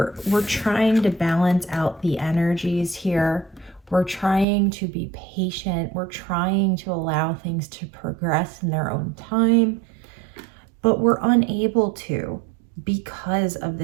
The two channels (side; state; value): left; drops out; at 4.5 s